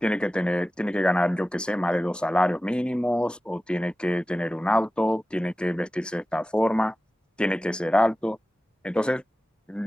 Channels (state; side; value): normal; both; correlation 0.96